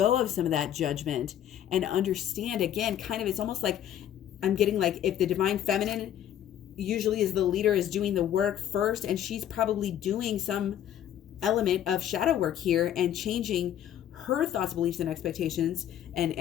of some of that judgment, and understand, again, kind of, it's almost like I'm getting like, if the divine feminine usually is the leader, is doing the work first, and she's probably doing some element of shadow work here and changing her thoughts, beliefs, and expectations,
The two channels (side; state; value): right; quieter; 10.8 dB